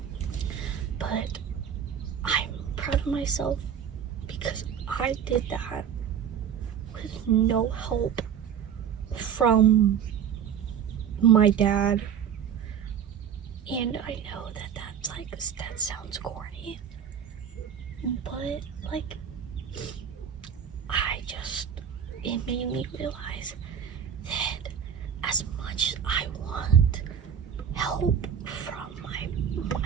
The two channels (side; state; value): left; quieter; 8.3 dB